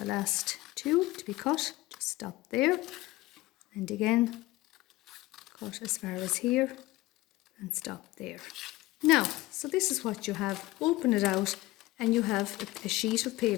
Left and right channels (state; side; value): quieter; right; 18.9 dB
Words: last two to be cut. Just stop there. And again, cut as far as here and stop there. Now, so this is what you have. Open it out and you have a sheet of